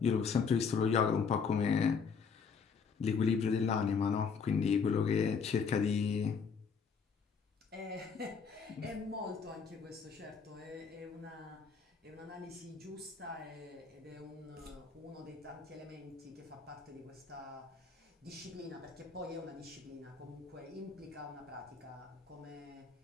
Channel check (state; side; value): quieter; right; 5.7 dB